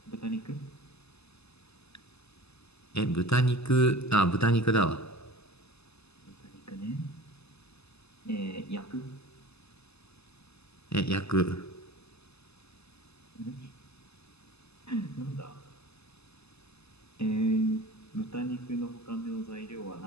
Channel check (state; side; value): late; right; 0.79 ms